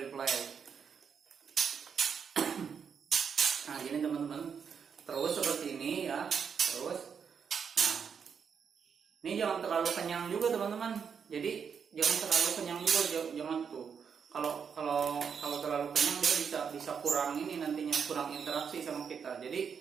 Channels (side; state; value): left; quieter; 6.8 dB